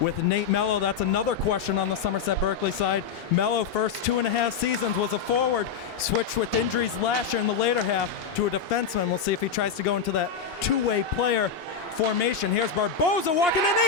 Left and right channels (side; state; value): right; quieter; 6.5 dB